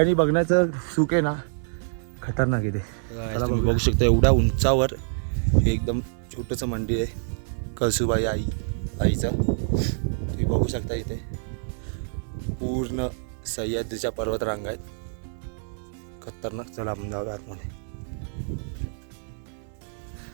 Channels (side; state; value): left; silent; 61 dB below the other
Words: बघण्याचं सुख आहे ना, खतरनाक आहे ते. तुम्ही बघू शकता एवढ्या उंचावर हे एकदम छोटंसं मंदिर आहे कळसूबाई आईचं. तुम्ही बघू शकता इथे पूर्ण सह्याद्रीच्या पर्वत रांगा आहेत, खतरनाक. चला आपण जाऊया आतमध्ये.